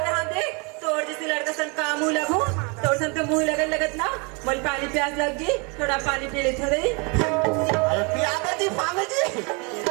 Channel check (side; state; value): left; quieter; 31.6 dB